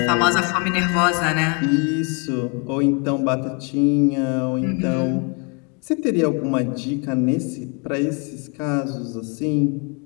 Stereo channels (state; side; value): quieter; right; 34.9 dB